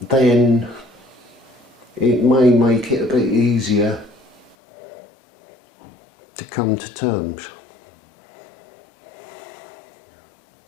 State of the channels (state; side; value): drops out; right; at 4.5 s